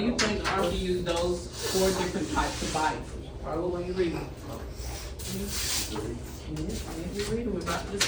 you think the author used those 4 different types of biases? Follow when you read them. You read them, we're about to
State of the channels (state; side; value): identical; both; correlation 1.00